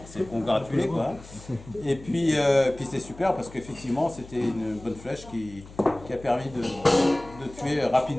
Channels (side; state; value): left; noise; hum, 19 dB below the sound